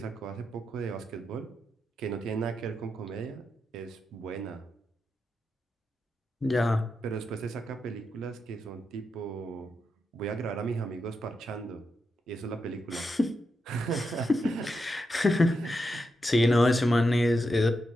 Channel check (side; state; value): both; normal; correlation 0.85